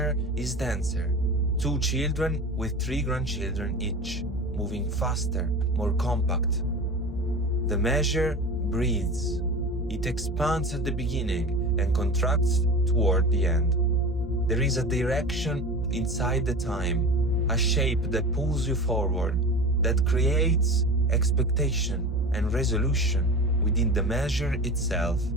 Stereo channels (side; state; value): both; normal; correlation 0.32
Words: is denser, 2 children with 3 grandchildren each, moving faster, more compact. The measure breathes. It expands at the beginning and contracts toward the end. There is a direction inside the time, a shape that pulls you forward, that creates expectation and resolution within the measure itself,